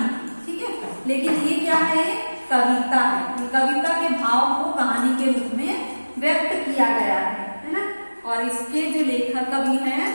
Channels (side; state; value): both; inverted; correlation -1.00